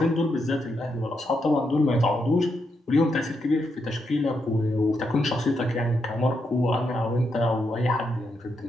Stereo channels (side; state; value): both; normal; correlation 0.81